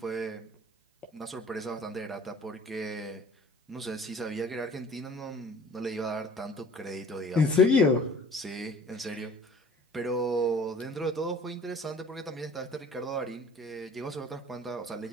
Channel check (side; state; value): both; normal; correlation 0.49